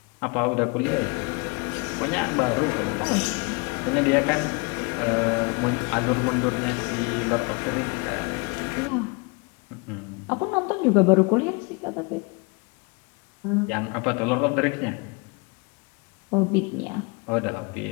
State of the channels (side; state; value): right; quieter; 30.5 dB